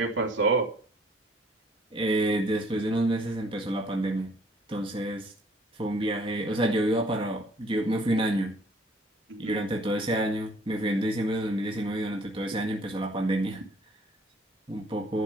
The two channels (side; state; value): both; normal; correlation 0.59